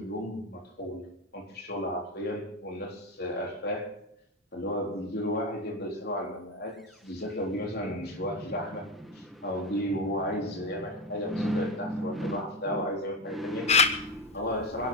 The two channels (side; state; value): both; normal; correlation 0.17